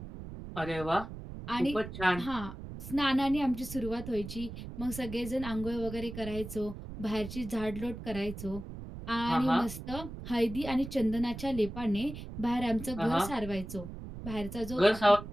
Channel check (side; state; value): right; noise; rumble, 10 dB below the sound